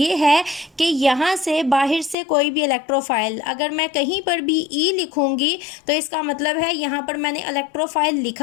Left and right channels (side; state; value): right; drops out; at 2.1 s